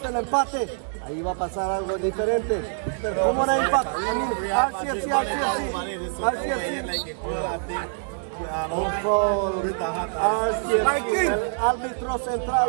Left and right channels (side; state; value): left; silent; digital silence